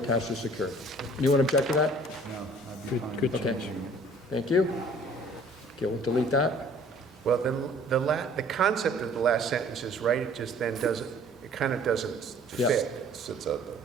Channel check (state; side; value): normal; both; correlation 0.54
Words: or secured. Anyone object to that? No, I'd be fine Good with Okay. changing it. Thank you. Okay, we'll delete that. Well, then, the concept of the last sentence is right, it just then doesn't, it kind of doesn't Yeah. fit. It sits out there,